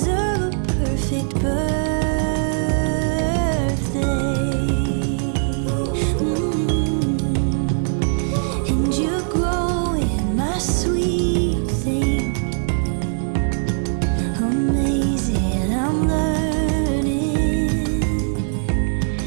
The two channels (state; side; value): silent; left; digital silence